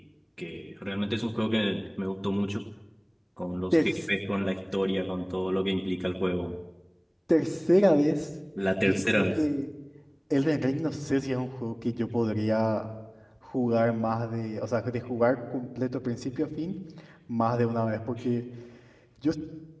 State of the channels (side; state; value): both; identical; correlation 1.00